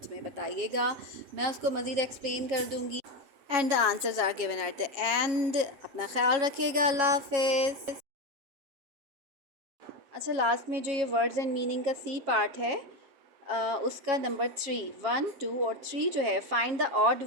में बताइएगा, मैं उसको मज़ीद एक्सप्लेन कर दूँगी। And the answers are given at the end. अपना ख्याल रखिएगा, अल्लाह हाफिज़। अच्छा, लास्ट में जो ये वर्ड्स एंड मीनिंग का सी पार्ट है उसका नंबर 3, 1, 2 और 3 जो है, find the odd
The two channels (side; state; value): left; late; 7.6 ms